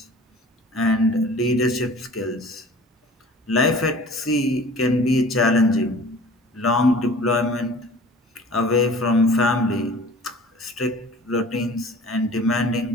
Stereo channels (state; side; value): normal; both; correlation 0.45